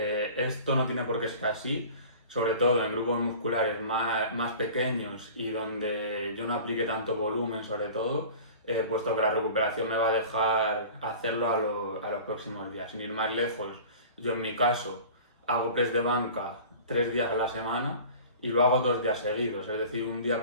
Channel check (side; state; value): both; inverted; correlation -0.41